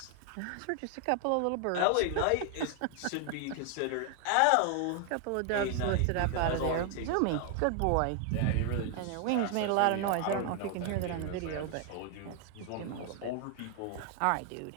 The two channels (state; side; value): different; both; correlation 0.00